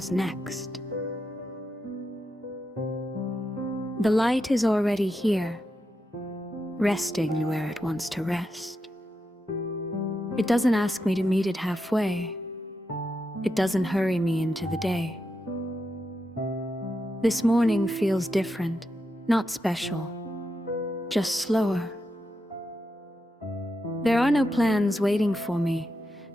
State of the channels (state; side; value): normal; both; correlation 0.86